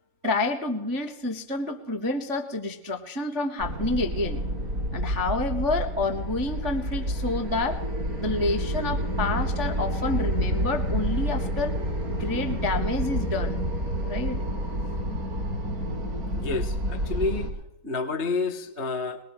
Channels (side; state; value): left; late; 3.5 ms